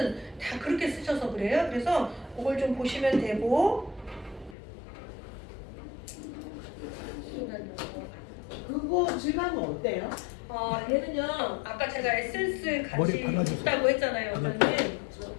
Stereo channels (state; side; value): drops out; right; at 4.5 s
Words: 다 그렇게 쓰셔서 그래요. 그래서 그걸 좀 보시면 되고 그거 질감은 어때요? 얘는요 아까 제가 에센스 같이 있다고 했잖아요. 그러면